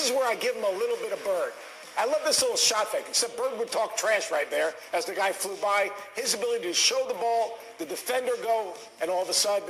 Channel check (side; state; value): both; identical; correlation 1.00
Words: is where I give him a little bit of Bird. I love this little shot fake, except Bird would talk trash right there as the guy flew by. His ability to show the ball, the defender go, and all of a